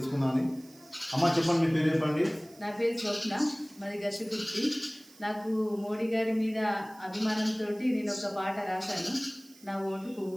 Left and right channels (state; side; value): noise; right; hiss, 24 dB below the sound